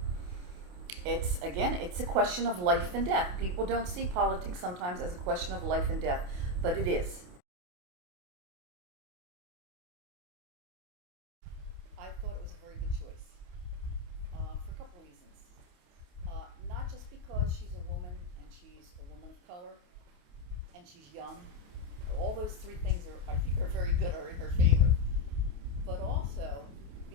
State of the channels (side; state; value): left; late; 28 ms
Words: it's a question of life and death. People don't see politics sometimes as a question of life and death, but it is. I thought it was a very good choice for a couple of reasons. Not just because she's a woman and she's a woman of color and she's young. All those three things I think, are very good, are in her favor. But also